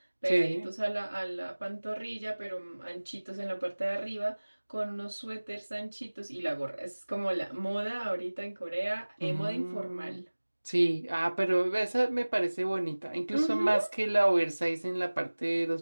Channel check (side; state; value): both; inverted; correlation -1.00